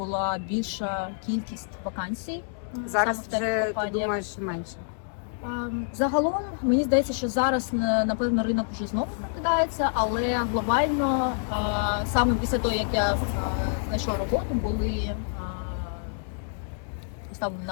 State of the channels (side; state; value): right; silent; digital silence